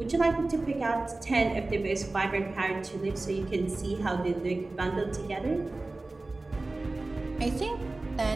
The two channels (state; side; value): quieter; left; 3.1 dB